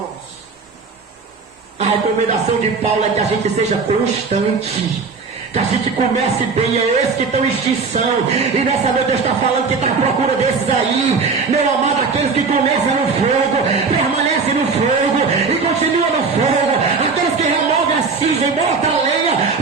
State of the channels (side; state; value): left; quieter; 4.8 dB